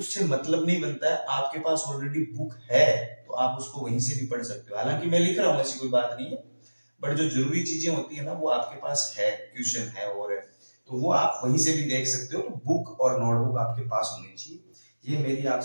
मतलब नहीं बनता है। आपके पास ऑलरेडी बुक है तो आप उसको वहीं से भी पढ़ सकते हो। हालांकि मैं लिख रहा हूँ, ऐसी कोई बात नहीं है, बट जो जरूरी चीजें होती है ना वो आपके पास है, क्वेश्चन है और है, तो वो आप वहीं से भी देख सकते हो। तो बुक और नोटबुक आपके पास होनी चाहिए, ये मेरी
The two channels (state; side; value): inverted; both; correlation -1.00